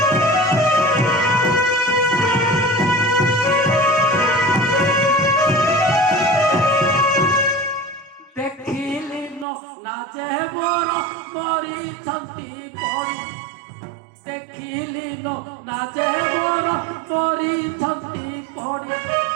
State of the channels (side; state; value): left; drops out; at 9.5 s